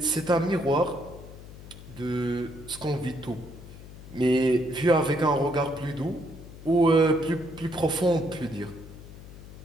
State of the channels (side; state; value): left; noise; hum, 16 dB below the sound